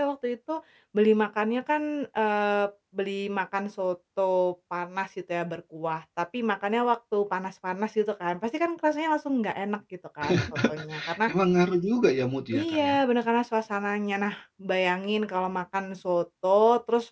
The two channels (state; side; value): identical; both; correlation 1.00